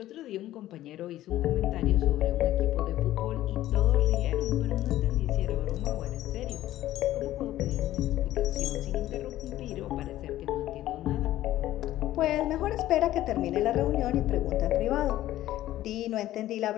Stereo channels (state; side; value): quieter; right; 14.2 dB